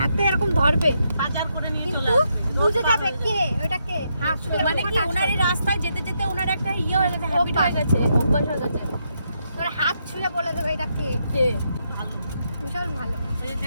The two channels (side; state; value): both; inverted; correlation -0.80